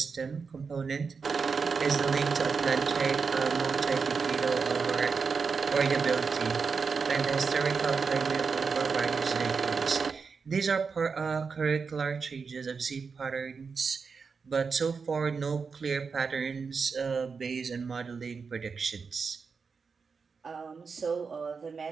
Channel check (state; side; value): quieter; left; 5.3 dB